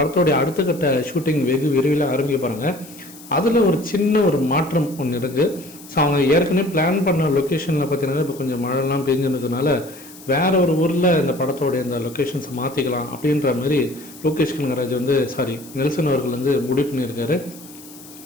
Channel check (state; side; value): noise; left; hiss, 19 dB below the sound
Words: அடுத்த கட்ட ஷூட்டிங் வெகு விரைவில் ஆரம்பிக்க போகிறாங்க. அதில் ஒரு சின்ன ஒரு மாற்றம் ஒன்று இருக்குது. ஸோ அவங்க ஏற்கனவே பிளான் பண்ண லொக்கேஷனில் பார்த்தீங்கன்னா இப்போ கொஞ்சம் மழைலாம் பெஞ்சுனதுனால வேற ஒரு ஊரில் இந்த படத்தோடைய இந்த லொக்கேஷன்ஸை மாற்றிக்கலாம் அப்படின்ற மாதிரி லோகேஷ் கனகராஜ் நெல்சன் அவர்கள் முடிவு பண்ணியிருக்காரு.